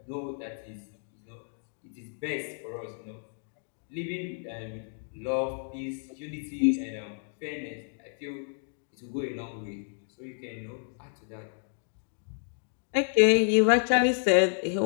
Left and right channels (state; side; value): silent; right; 57 dB below the other